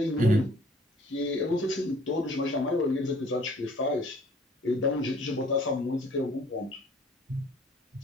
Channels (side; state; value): both; normal; correlation 0.55